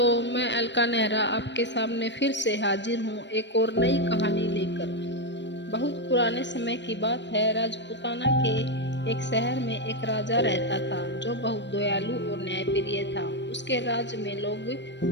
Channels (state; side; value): late; right; 0.52 ms